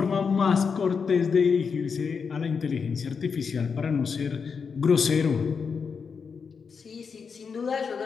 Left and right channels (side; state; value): right; quieter; 5.8 dB